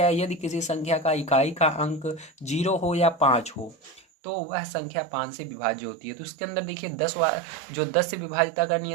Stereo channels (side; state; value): left; drops out; at 4.0 s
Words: है, यदि किसी संख्या का इकाई का अंक 0 हो या 5 हो तो वह संख्या 5 से विभाज्य होती है। तो उसके अंदर देखिए जो 10 से विभाज्यता का